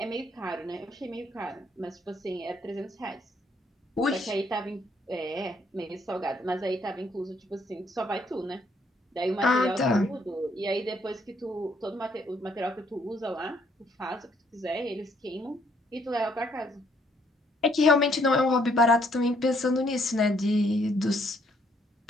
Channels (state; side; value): normal; both; correlation 0.68